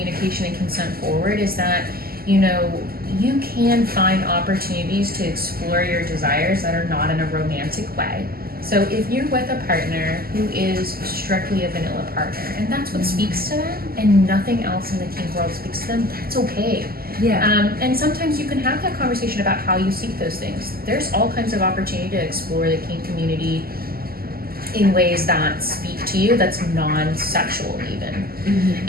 and consent forward, is that, you know, you can find opportunities to explore your desires that are not in a romantic way. So if you're with a partner who is strictly a vanilla partner, and that's what speaks to them, and nothing else in the kink world speaks to them, that's okay. Yeah. And sometimes you can have that conversation about how you seek those things. There's all kinds of opportunity to explore the kink community in ways that speak to you, that's non-sexual even.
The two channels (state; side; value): late; left; 0.44 ms